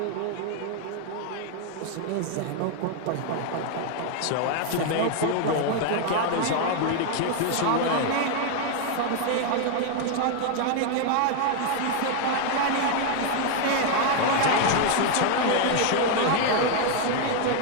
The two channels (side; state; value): both; different; correlation 0.01